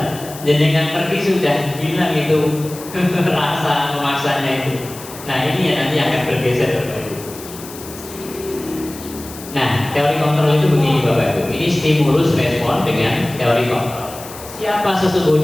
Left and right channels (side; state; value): left; noise; hiss, 15 dB below the sound